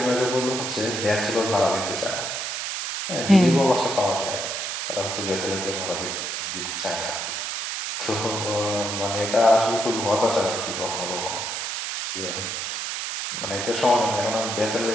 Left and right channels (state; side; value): noise; right; hiss, 3 dB below the sound